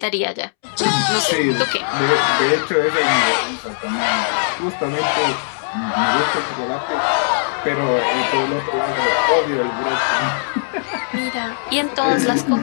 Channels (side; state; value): right; silent; 66 dB below the other